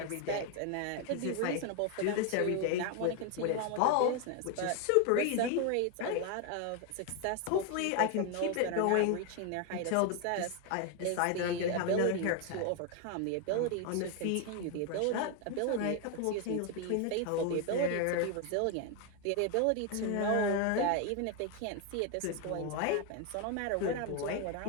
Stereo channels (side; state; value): both; different; correlation 0.01